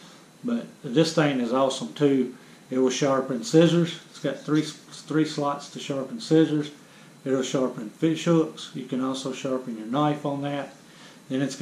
But this thing is awesome too. It will sharpen scissors. It's got three slots to sharpen scissors. It'll sharpen fish hooks. You can also sharpen your knife on that. Then it's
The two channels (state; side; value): identical; both; correlation 1.00